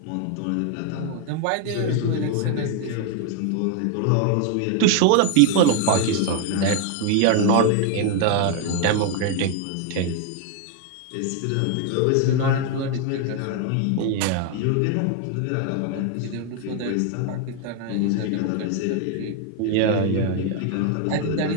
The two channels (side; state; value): both; different; correlation 0.01